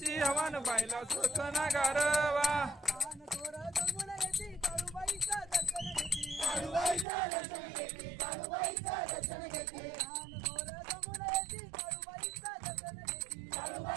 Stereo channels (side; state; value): left; drops out; at 7.1 s